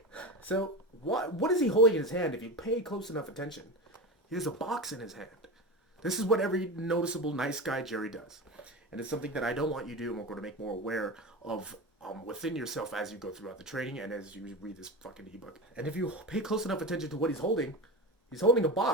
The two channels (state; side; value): normal; both; correlation 0.25